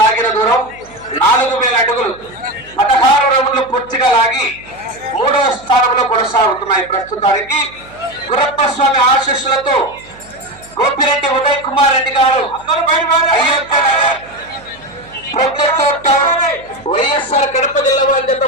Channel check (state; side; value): noise; right; hum, 23 dB below the sound